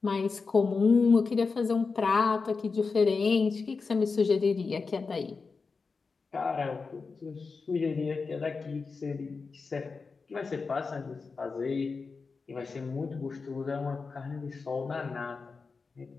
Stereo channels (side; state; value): right; quieter; 4.6 dB